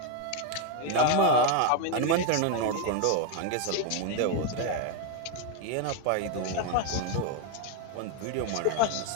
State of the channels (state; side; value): different; both; correlation 0.01